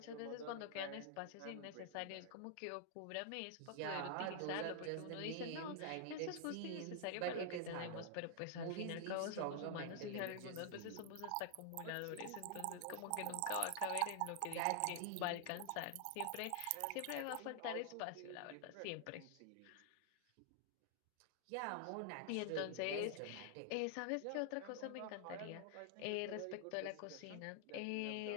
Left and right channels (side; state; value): both; different; correlation -0.01